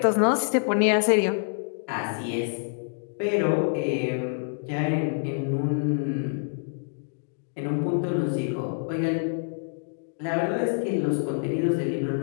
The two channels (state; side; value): silent; right; digital silence